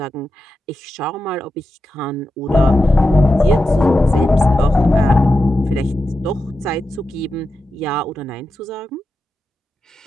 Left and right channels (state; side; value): normal; both; correlation 0.90